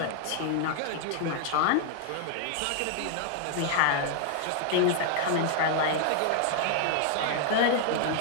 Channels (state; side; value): different; both; correlation 0.00